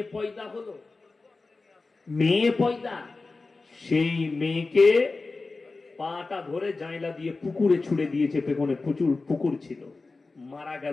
পয়দা হলো, মেয়ে পয়দা। সেই মেয়েকে পাটা ধরে জাইলা দিয়ে পুকুরে ছুড়ে দিয়েছে, পেছনে প্রচুর পুকুর ছিল, মারা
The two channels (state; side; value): quieter; right; 3.7 dB